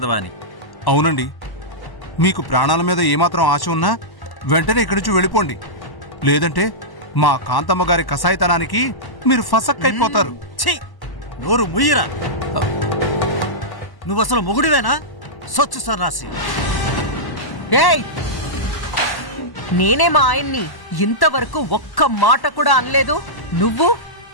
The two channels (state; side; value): late; right; 1.1 ms